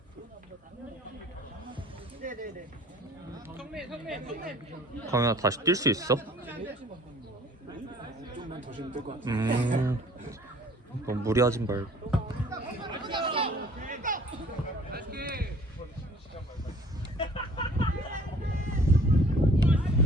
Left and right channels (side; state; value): both; normal; correlation 0.53